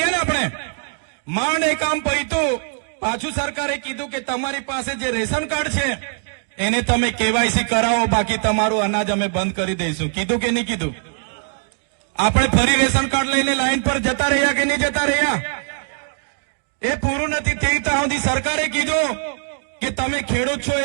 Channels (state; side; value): silent; left; digital silence